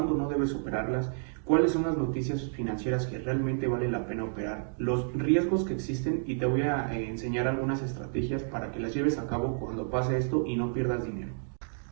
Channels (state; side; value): silent; left; digital silence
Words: no debes operarlas, cuáles son las noticias financieras que realmente vale la pena operar, los riesgos que existen y te voy a enseñar algunas estrategias para que las lleves a cabo cuando pase esto y no pierdas dinero.